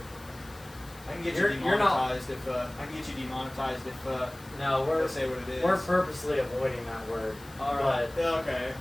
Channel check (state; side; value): noise; left; hiss, 22 dB below the sound